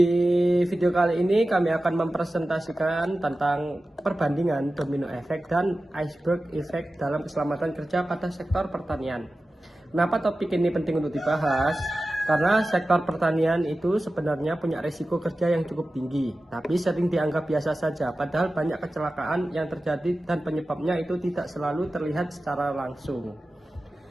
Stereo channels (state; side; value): normal; both; correlation 0.95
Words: video kali ini kami akan mempresentasikan tentang perbandingan domino effect dan iceberg effect dalam keselamatan kerja pada sektor pertanian. Kenapa topik ini penting untuk dibahas? Karena sektor pertanian itu sebenarnya punya risiko kerja yang cukup tinggi, tapi sering dianggap biasa saja, padahal banyak kecelakaan yang terjadi dan penyebabnya itu tidak selalu terlihat secara langsung.